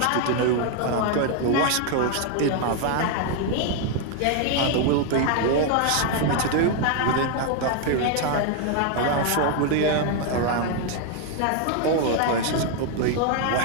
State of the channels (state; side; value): different; both; correlation 0.00